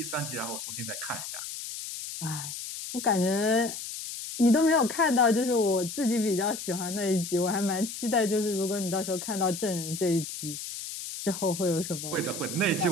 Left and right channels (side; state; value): left; noise; hiss, 8 dB below the sound